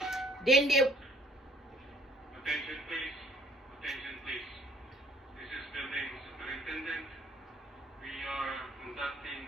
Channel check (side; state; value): both; normal; correlation 0.59